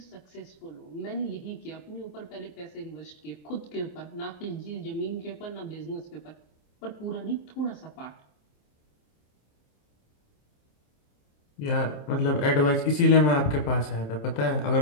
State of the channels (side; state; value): right; late; 27 ms